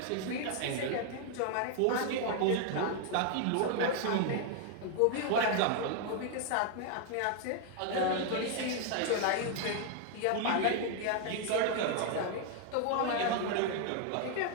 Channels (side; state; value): both; different; correlation 0.00